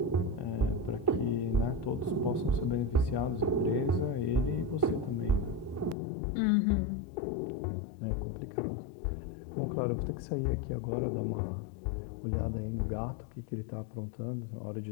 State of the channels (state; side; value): drops out; right; at 6.0 s